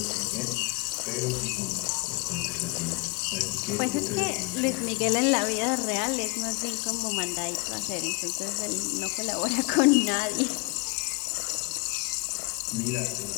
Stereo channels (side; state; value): right; quieter; 28.6 dB